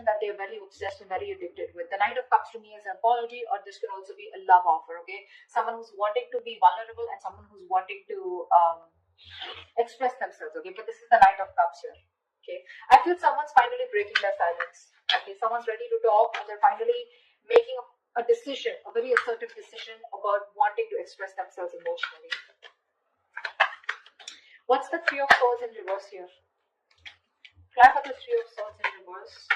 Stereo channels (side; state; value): both; identical; correlation 1.00